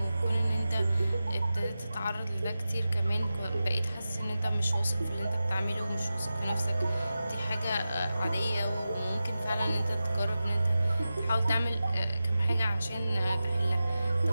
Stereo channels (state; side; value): inverted; both; correlation -0.93